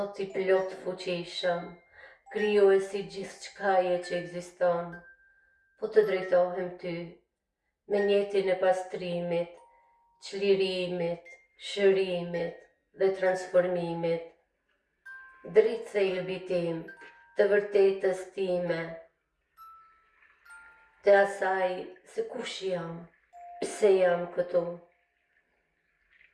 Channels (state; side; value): identical; both; correlation 1.00